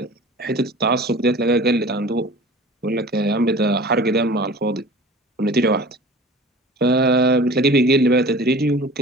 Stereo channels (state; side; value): normal; both; correlation 0.42